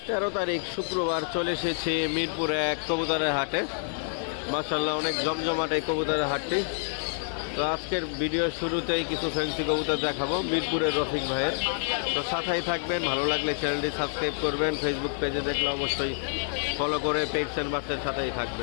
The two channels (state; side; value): silent; right; 59 dB below the other